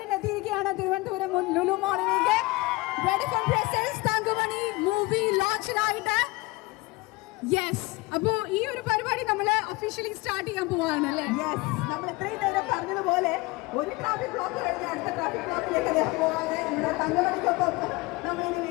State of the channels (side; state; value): right; quieter; 22.7 dB